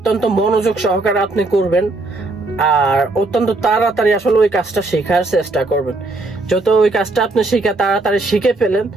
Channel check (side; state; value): left; quieter; 3.1 dB